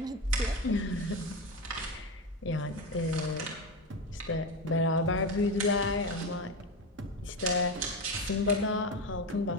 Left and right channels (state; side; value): normal; both; correlation 0.18